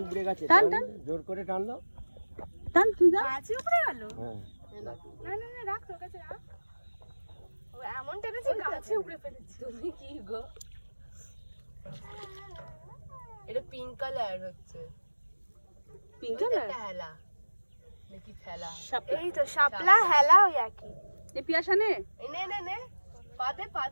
উপড়ে গেছে, টান টান জোর করে টানলো, টান তুই যা। গাছ উপড়ে গেল। হ্যাঁ না না না, রাখ, তোর কাছে রাখ। ও এমন টেনেছে গাছে উপড়ে ফেলেছে। তুমি কি গো? এটা পিঙ্ক কালার হচ্ছে। পিঙ্ক কালার এটা হেলা নাকি ফেলা? এই তো শাপলা হেলা ওই একই। এই পিয়াসা নে, নে নে নে, পাদে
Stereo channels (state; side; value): inverted; both; correlation -1.00